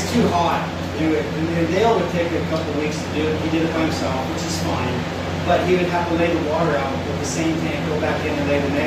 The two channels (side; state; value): both; identical; correlation 1.00